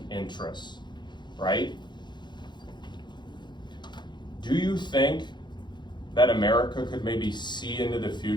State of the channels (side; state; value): right; late; 0.22 ms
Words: interests, right? Do you think that America could maybe see into the